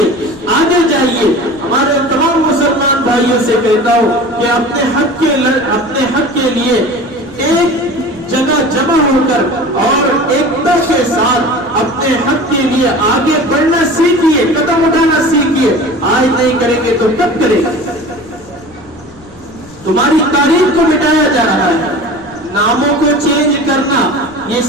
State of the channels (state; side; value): noise; left; rumble, 24 dB below the sound